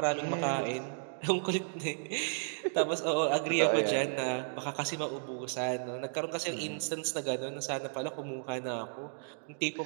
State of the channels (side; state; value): left; silent; digital silence